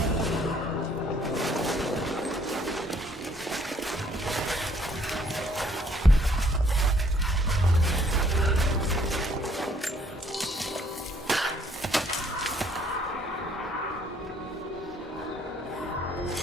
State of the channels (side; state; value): both; normal; correlation 0.63